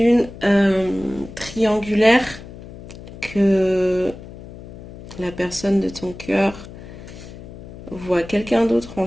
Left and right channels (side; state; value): left; noise; hum, 15 dB below the sound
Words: triangulaire, que la personne de ton cœur voit quelqu'un d'autre en